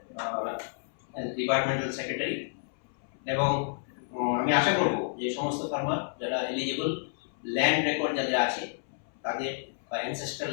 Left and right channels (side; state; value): right; silent; 58 dB below the other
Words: ডিপার্টমেন্টাল সেক্রেটারি, এবং আমি আশা করব যে সমস্ত ফার্মার যারা এলিজিবল, ল্যান্ড রেকর্ড যাদের আছে তাদের, বা অ্যানসেস্ট্রাল